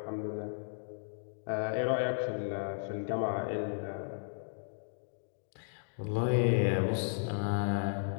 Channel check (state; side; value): silent; right; digital silence